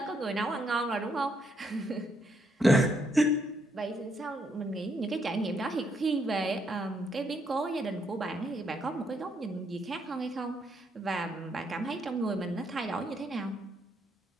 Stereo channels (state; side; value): normal; both; correlation 0.74